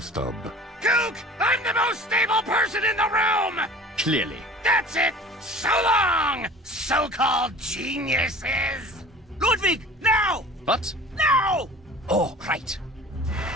Cook! I'm the most stable person in the room! Clearly. That's it! So long, so-called geniuses! Ludwig, now! What? Now! Oh, right.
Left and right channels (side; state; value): both; normal; correlation 0.42